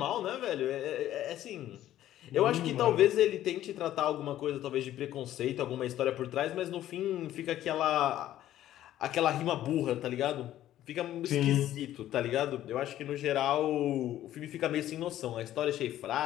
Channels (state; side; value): quieter; right; 12.9 dB